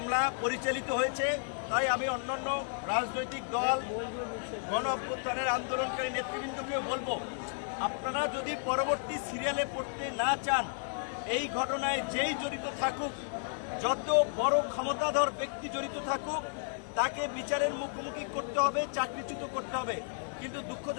পরিচালিত হয়েছে। তাই আমি অন্যান্য রাজনৈতিক দল, গণ অভ্যুত্থানের আন্দোলনকারী নেতৃবৃন্দকেও বলবো, আপনারা যদি পরবর্তী সিরিয়ালে পড়তে না চান, এই ঘটনায় যেই জড়িত থাকুক, যত বড় ক্ষমতাধর ব্যক্তি জড়িত থাকুক, তাকে বিচারের মুখোমুখি করতে হবে, চাকরিচ্যুত করতে হবে। কিন্তু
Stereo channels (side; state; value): right; silent; 56 dB below the other